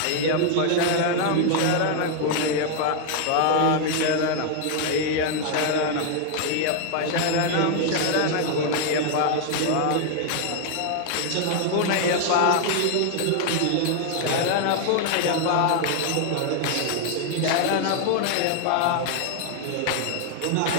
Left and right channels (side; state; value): both; different; correlation 0.00